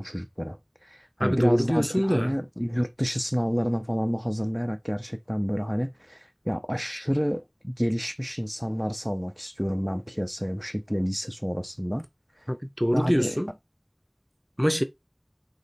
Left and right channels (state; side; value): identical; both; correlation 1.00